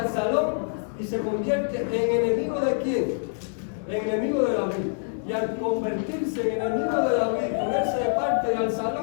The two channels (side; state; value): right; silent; digital silence